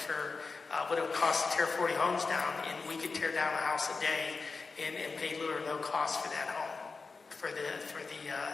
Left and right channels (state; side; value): quieter; right; 4.3 dB